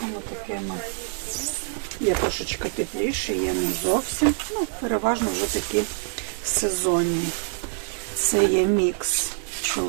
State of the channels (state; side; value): silent; left; 62 dB below the other